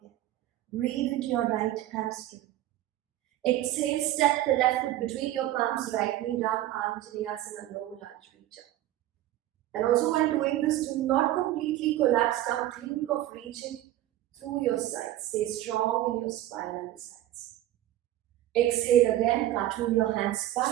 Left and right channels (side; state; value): left; quieter; 14.1 dB